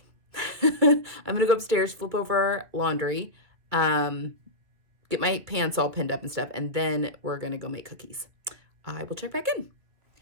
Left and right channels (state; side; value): late; left; 2.4 ms